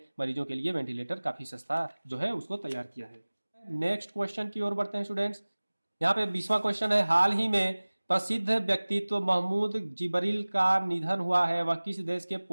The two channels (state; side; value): inverted; both; correlation -1.00